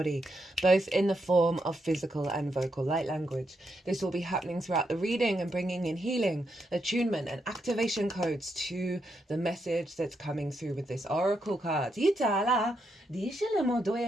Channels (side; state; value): both; normal; correlation 0.81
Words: both in the form of physical and vocal light language. This will be happening throughout the reading and bringing in healing, attunement, and activation codes to the message that's coming through with this oracle card. I